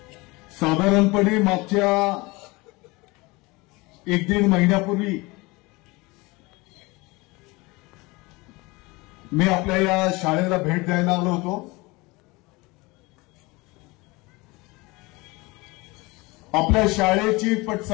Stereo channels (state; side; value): quieter; right; 23.8 dB